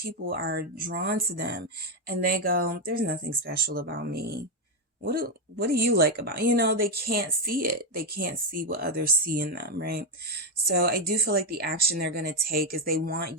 are drawn to them and they go, there's nothing special about me. What do you like about, you know, they can't see it. They can't see what others see in them, right? So I do feel like the action they're going to take is they want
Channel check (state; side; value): normal; both; correlation 0.05